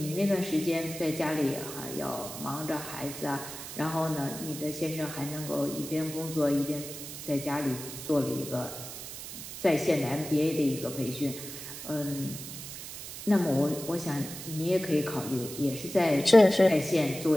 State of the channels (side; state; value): right; noise; hiss, 10 dB below the sound